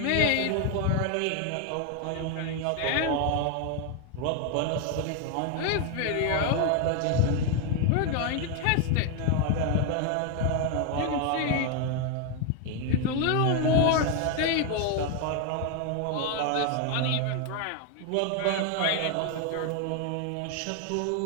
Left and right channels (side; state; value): both; different; correlation 0.01